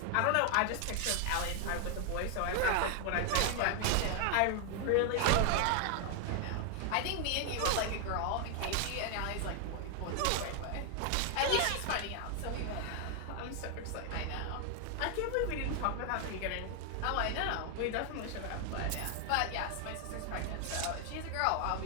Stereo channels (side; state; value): both; different; correlation 0.00